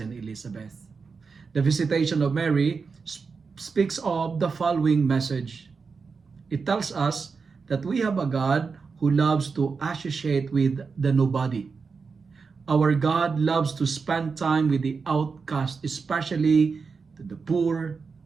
Elizabeth. The visitation of Mary speaks of the following message. It tells us that we have a God who loves to associate with the nobody. Our God loves to spend time with the outcast, especially the poor,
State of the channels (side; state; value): left; quieter; 5.0 dB